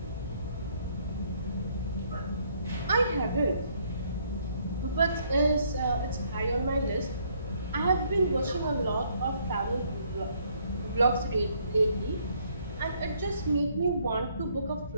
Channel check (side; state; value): both; inverted; correlation -0.67